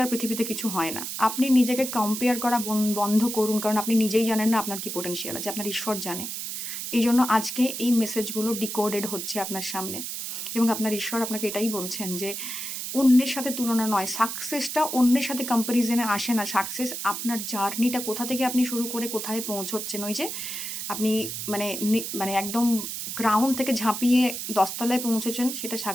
আর পৃথিবীতে কিছু হয় না। আপনি নিজেকে কম্পেয়ার করা বন্ধ করুন, কারণ আপনি নিজেই জানেন না আপনার কি পোটেনশিয়াল আছে, আপনার ঈশ্বর জানে। এই জন্য আজকে এই মেসেজগুলো ডিকোডেড হচ্ছে আপনার সামনে, এবং আপনার ঈশ্বর আপনাকে এটাই বলছেন যে অন্যের সাথে তুলনা নয়, সাকসেসটা অন্যের সাথে কম্প্যারিজনে আসে না। সাকসেস আপনার জার্নিটা, কোথা থেকে আপনি শুরু করে কোথায় পৌঁছচ্ছেন, ওই যে আপনি মানে মানে একদম গ্রাউন্ড থেকে ঝাঁপিয়ে 10 তলায় পৌঁছেছেন, সেটা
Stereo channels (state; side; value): noise; right; hiss, 5 dB below the sound